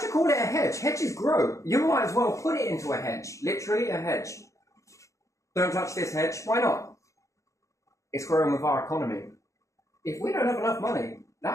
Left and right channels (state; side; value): late; right; 0.15 ms